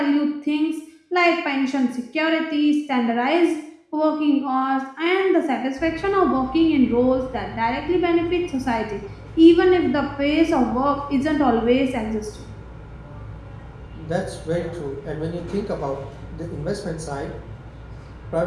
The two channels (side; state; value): both; identical; correlation 1.00